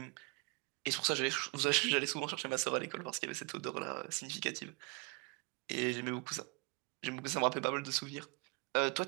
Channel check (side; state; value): left; quieter; 30.9 dB